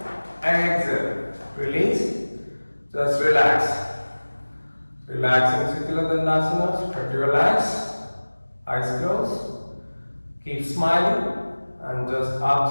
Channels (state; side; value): inverted; both; correlation -1.00